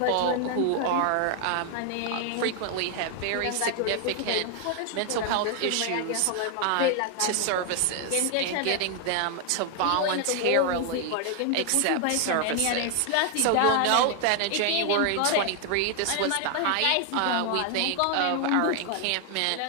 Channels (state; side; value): different; both; correlation 0.00